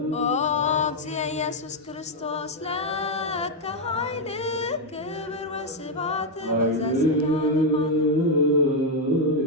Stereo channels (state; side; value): normal; both; correlation 0.02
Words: ኦ እግዚእ ኢየሱስ ክርስቶስ ለከ ኃይል ክብር ወስብሐት ወዘለዓለመ